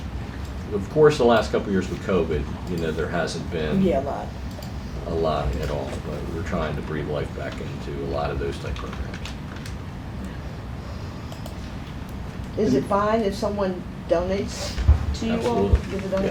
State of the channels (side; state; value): both; identical; correlation 1.00